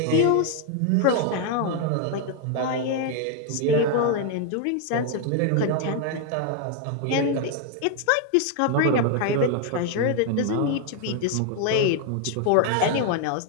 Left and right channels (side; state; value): both; different; correlation 0.01